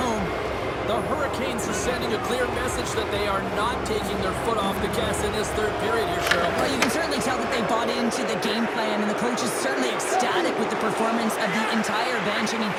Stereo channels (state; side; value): identical; both; correlation 1.00